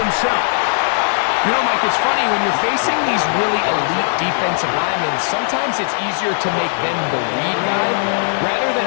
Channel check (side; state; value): right; silent; digital silence